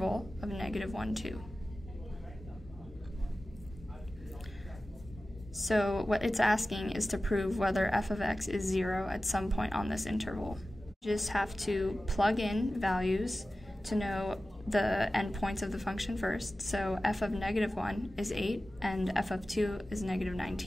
of -1, 2. So what it's asking is to prove whether f of x is 0 at some point on this interval. You just have to plug in values to know the endpoints of the function first. So f of -1 is 8 and f of 2 is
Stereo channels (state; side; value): normal; both; correlation 0.95